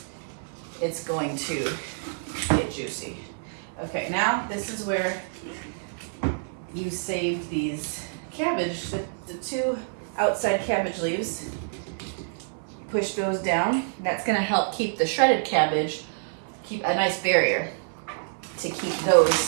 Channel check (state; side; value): silent; left; 60 dB below the other